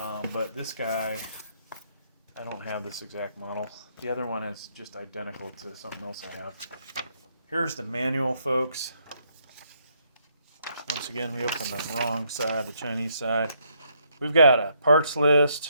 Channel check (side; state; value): both; inverted; correlation -0.73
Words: but this guy, I don't have this exact model. The other one is just identical to something else I have. Here's the manual, folks. Once again, we opened the wrong side, the Chinese side. We've got a parts